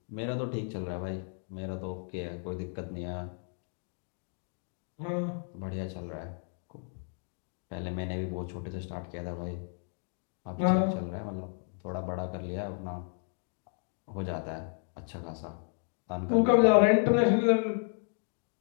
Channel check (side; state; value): right; silent; 56 dB below the other